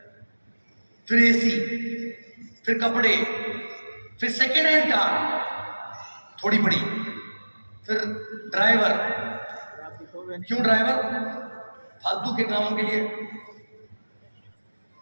फिर एसी, फिर कपड़े, फिर सेकेंड हैंड कार थोड़ी बड़ी, फिर ड्राइवर, क्यों ड्राइवर? फालतू के कामों के लिए।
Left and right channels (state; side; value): inverted; both; correlation -1.00